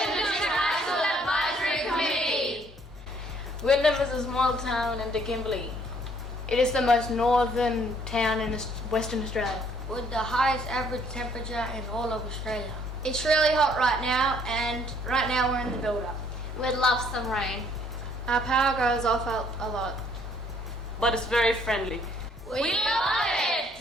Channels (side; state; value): both; normal; correlation 0.63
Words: High School Advisory Committee. Wyndham is a small town in the Kimberley. It is the most northern town in Western Australia, with the highest average temperature in all of Australia. It's really hot right now, and right now we're in the build-up. We'd love some rain. Our power goes off a lot. But it's very friendly. We love